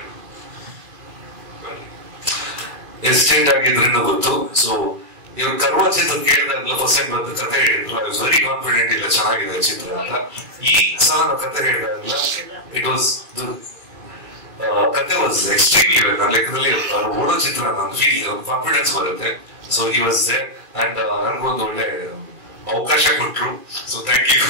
ಆಗಿದ್ರಿಂದ ಗೊತ್ತು. ಸೊ ಇವ್ರು ಕರ್ವ ಚಿತ್ರ ಕೇಳಿದಾಗಲ ಫಸ್ಟ್ ಟೈಮ್ ಬಂದು ಕತೆ ಹೇಳಿದ್ರು. ಐ ವಾಸ್ ವೆರಿ ಕಾನ್ಫಿಡೆಂಟ್ ಇಲ್ಲ ಚೆನ್ನಾಗಿದೆ ಚಿತ್ರ ಅಂತ. ಈ ಸಲ ಕತೆ ಹೇಳಿದಾಗಲ ಇಟ್ ವಾಸ್ ಕತೆ ವಾಸ್ ಎಕ್ಸ್ಟ್ರೀಮ್ಲಿ ವೆಲ್. ನನ್ನ ಲೆಕ್ಕದಲ್ಲಿ ಓಡೋ ಚಿತ್ರ ನನ್ನ ಫೀಲ್ ಕಾನ್ಫಿಡೆನ್ಸ್ ಬರುತ್ತೆ. So he was there and ನನ್ಗೊಂದು ಒಳ್ಳೆ ಅವಕಾಶ ಕೊಟ್ರು. So thank you.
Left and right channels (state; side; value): late; left; 2.3 ms